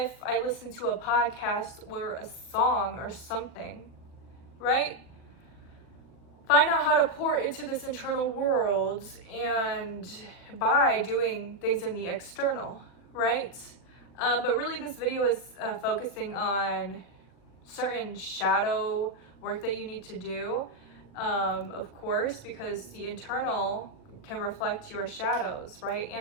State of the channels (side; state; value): right; late; 39 ms